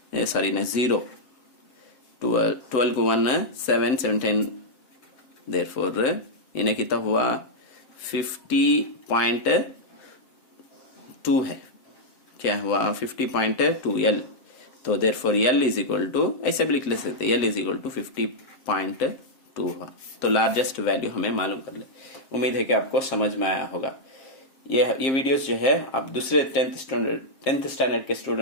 सॉरी ना 0, 12 को 1 7 17, देयरफॉर इन्हें कितना हुआ 50.2 है, क्या हुआ 50.2 यल। तो therefore l is equal to, ऐसे भी लिख ले सकते, यल इज इक्वल टू 50.2 हुआ। तो लार्जेस्ट वैल्यू हमें मालूम कर ले। उम्मीद है कि आपको समझ में आया होगा। ये वीडियोस जो है आप दूसरे 10th स्टैंडर्ड के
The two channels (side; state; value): right; late; 7.5 ms